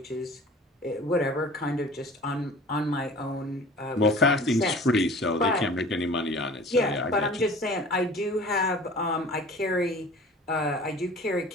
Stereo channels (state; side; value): normal; both; correlation 0.44